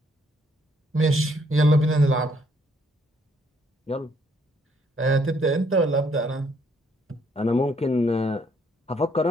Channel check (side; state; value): both; normal; correlation 0.68